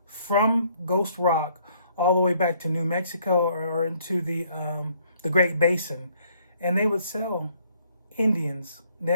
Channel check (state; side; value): inverted; both; correlation -0.65